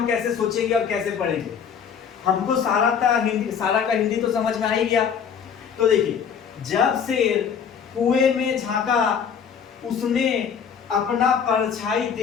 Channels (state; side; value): quieter; right; 7.3 dB